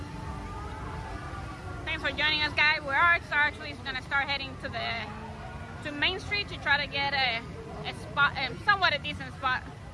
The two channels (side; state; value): both; identical; correlation 1.00